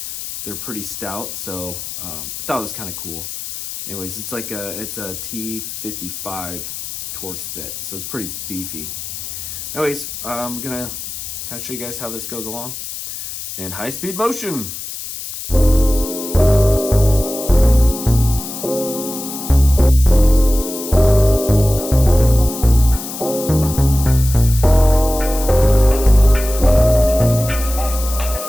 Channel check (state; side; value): noise; left; hiss, 9 dB below the sound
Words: They're pretty stout, so I thought it was kind of cool. Anyways, it's a T55 Torx bit, so it's pretty beefy. Anyways, I'm gonna kind of show you guys how this goes along in high speed motion.